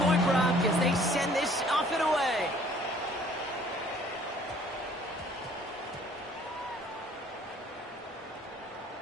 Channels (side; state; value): both; normal; correlation 0.57